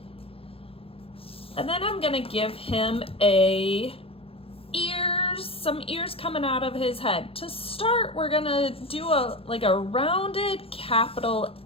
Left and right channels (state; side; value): late; right; 0.27 ms